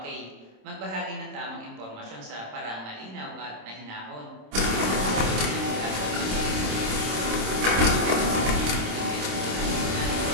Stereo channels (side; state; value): left; late; 27 ms